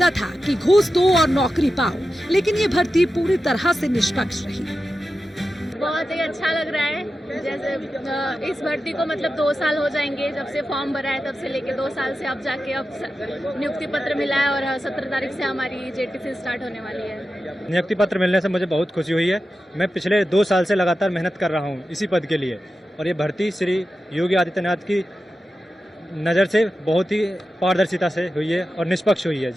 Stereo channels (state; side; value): normal; both; correlation 0.92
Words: था कि घूस दो और नौकरी पाओ, लेकिन ये भर्ती पूरी तरह से निष्पक्ष रही। बहुत ही अच्छा लग रहा है। जैसे इस भर्ती को मतलब 2 साल हो जाएंगे जब से फॉर्म भरा है, तब से लेके 2 साल से अब जाके अब नियुक्ति पत्र मिला है और 17 तारीख से हमारी जेटीसी स्टार्ट होने वाली है। नियुक्ति पत्र मिलने से मुझे बहुत खुशी हुई है। मैं पिछले 2 साल से लगातार मेहनत कर रहा हूँ इसी पद के लिए, और ये भर्ती श्री योगी आदित्यनाथ की नज़र से बहुत ही पारदर्शिता से हुई है और निष्पक्ष हुई है,